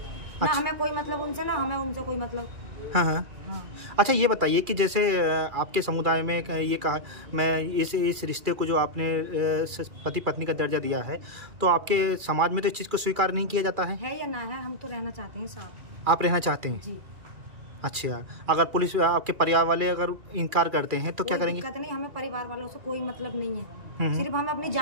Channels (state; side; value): late; left; 2.4 ms